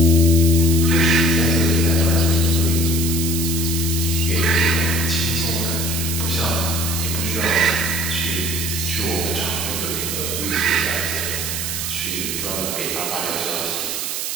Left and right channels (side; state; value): right; noise; hiss, 3 dB below the sound